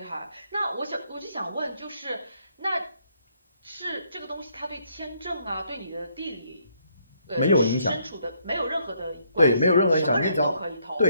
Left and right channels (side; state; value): both; inverted; correlation -0.71